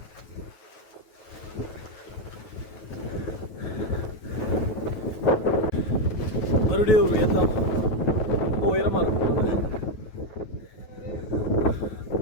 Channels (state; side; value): late; right; 9.3 ms